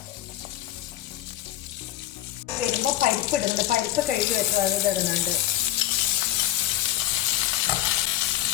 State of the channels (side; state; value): right; quieter; 13.4 dB